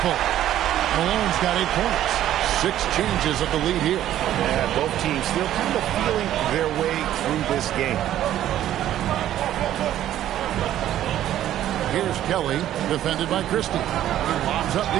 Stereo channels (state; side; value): quieter; left; 12.2 dB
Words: Malone's got 8 points. 6 changes of the lead here. Yeah, both teams still kind of feeling their way through this game. Here's Kelly, defended by Christie. He lobs up the